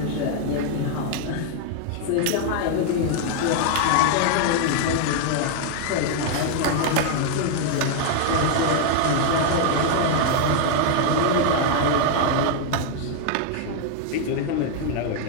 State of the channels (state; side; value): different; both; correlation 0.00